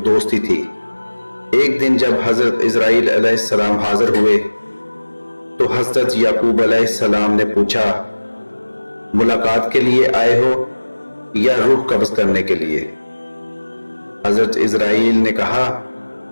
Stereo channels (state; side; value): inverted; both; correlation -1.00